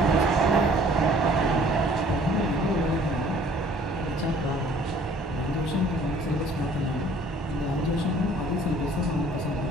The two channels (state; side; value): normal; both; correlation 0.55